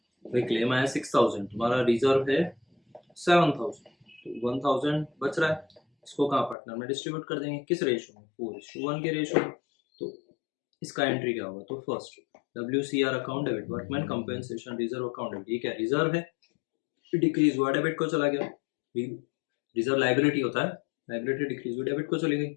भाई क्लेम आया 6,000, तुम्हारा रिजर्व है 7,000, तो 1,000 बच रहा है। इसको कहाँ पार्टनर में डिस्ट्रीब्यूट कर देंगे, किस रेशियो में 4:1 के रेशियो में। तो इसका एंट्री क्या होगा, तो first WCR account debit, workman compensation reserve account debit, ये क्या रिजर्व है, डिक्रीज हुआ डेबिट को चला गया। रिजर्व लाइबिलिटी होता है, लाइबिलिटी डिक्रीज हुई डेबिट को चली गई,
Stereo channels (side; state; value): right; drops out; at 6.6 s